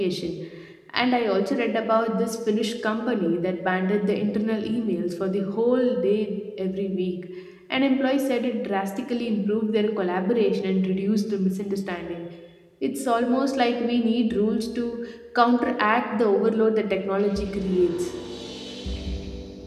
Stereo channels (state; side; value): identical; both; correlation 1.00